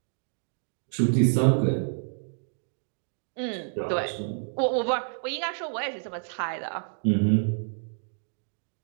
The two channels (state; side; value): silent; left; digital silence